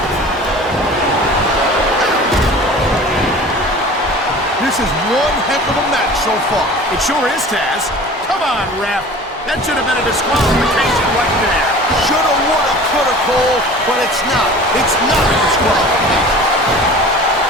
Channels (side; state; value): both; normal; correlation 0.42